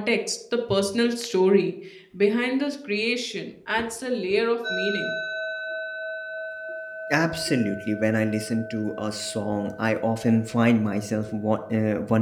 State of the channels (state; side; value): identical; both; correlation 1.00